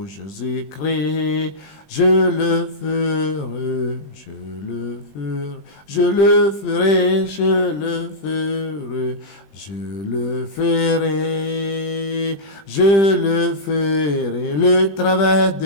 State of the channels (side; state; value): right; late; 20 ms